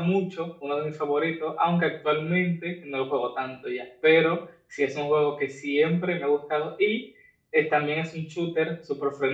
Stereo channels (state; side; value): identical; both; correlation 1.00